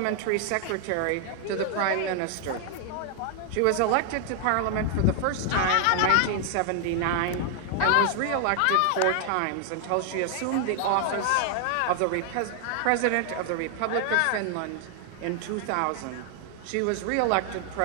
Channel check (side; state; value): both; different; correlation 0.00